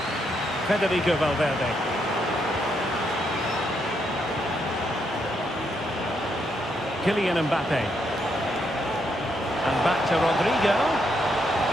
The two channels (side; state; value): both; normal; correlation 0.77